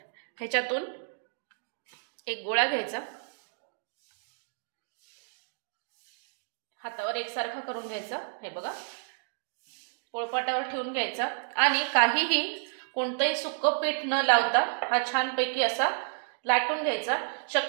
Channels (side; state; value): left; silent; digital silence